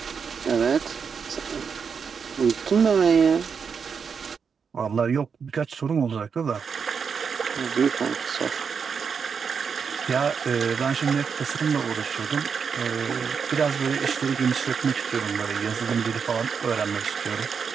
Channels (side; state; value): left; quieter; 6.2 dB